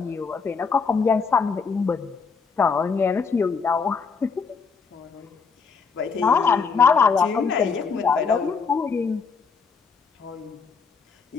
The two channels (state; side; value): quieter; right; 5.3 dB